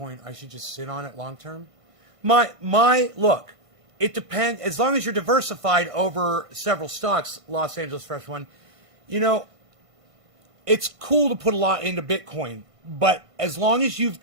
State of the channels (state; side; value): late; left; 1.5 ms